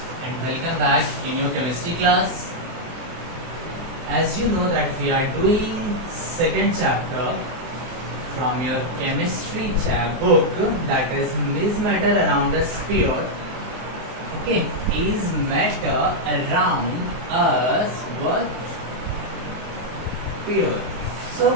and welcome back in your chemistry class. As you know that we are doing second chapter from your chemistry book, that is matter around a sphere. Okay, is matter around us what? Sphere.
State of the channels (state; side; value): late; left; 23 ms